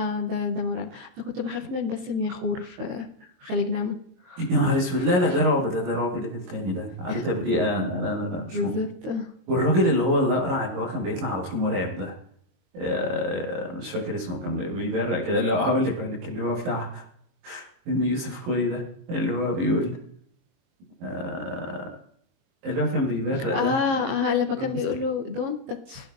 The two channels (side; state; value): left; late; 22 ms